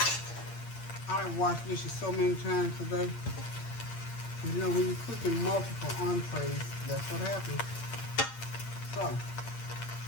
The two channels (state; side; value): late; right; 8.7 ms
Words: I've washed dishes so many times today. And you know, when you're cooking multiple entrees, that's what happens. So,